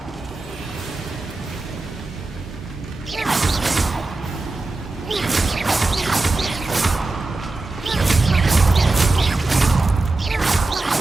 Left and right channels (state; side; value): quieter; left; 3.2 dB